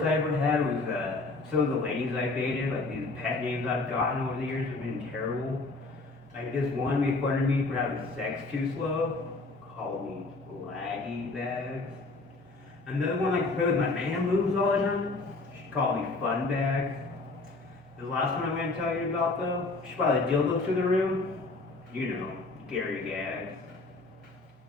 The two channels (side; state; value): right; quieter; 3.4 dB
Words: I ever had was some of the ladies I dated, like these pet names I've gotten over the years have been terrible. Like this one made fun of me for having sex too slow, called me laggy bags. And the other one like play with my man moves all the time, she called me fun bags. The last one I'm going to tell you about though, she brought a dildo to the room. You know, Gary Gags.